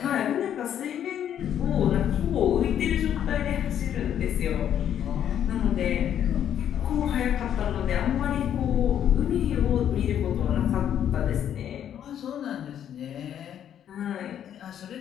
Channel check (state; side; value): quieter; right; 9.9 dB